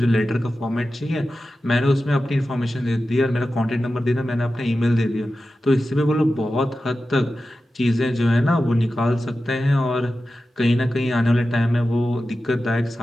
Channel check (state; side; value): normal; both; correlation 0.93